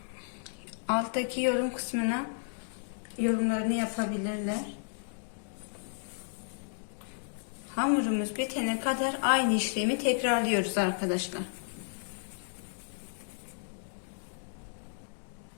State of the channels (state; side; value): silent; right; digital silence